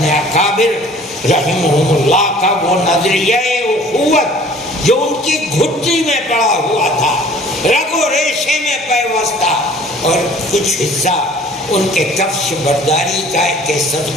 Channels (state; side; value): normal; both; correlation 0.51